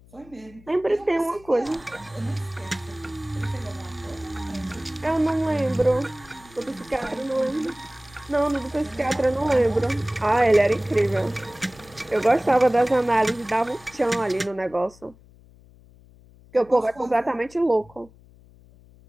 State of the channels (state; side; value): noise; left; hum, 25 dB below the sound